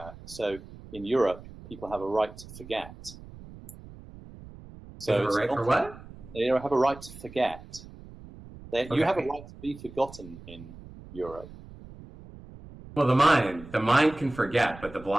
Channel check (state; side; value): noise; right; rumble, 17 dB below the sound